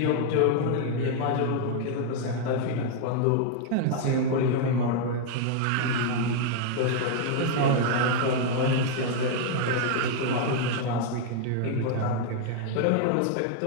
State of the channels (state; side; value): different; both; correlation 0.00